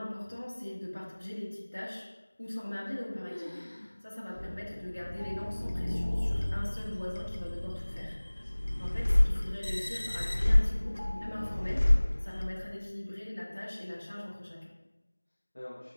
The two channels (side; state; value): both; inverted; correlation -1.00